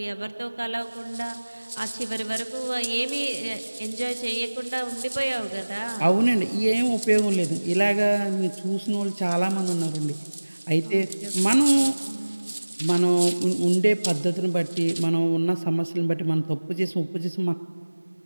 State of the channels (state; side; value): inverted; both; correlation -1.00